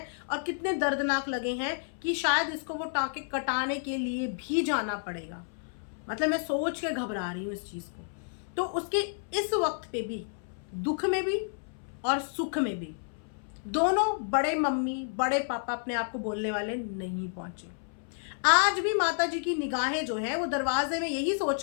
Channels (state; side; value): silent; right; 58 dB below the other